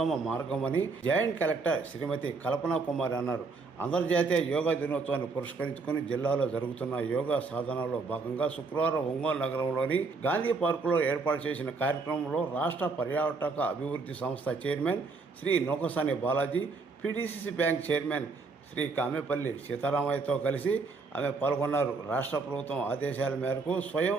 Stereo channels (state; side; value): quieter; left; 4.2 dB